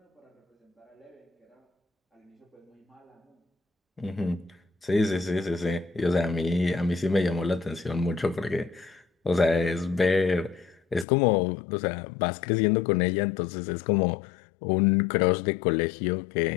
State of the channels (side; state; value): right; drops out; at 11.1 s